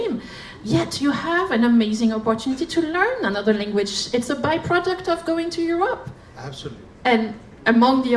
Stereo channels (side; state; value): both; identical; correlation 1.00